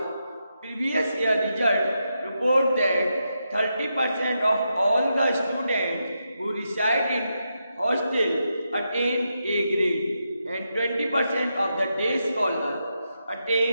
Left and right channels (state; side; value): inverted; both; correlation -0.85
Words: Previous year result report that 30% of all the students who reside in hostel attain A grade and 20% of the day scholars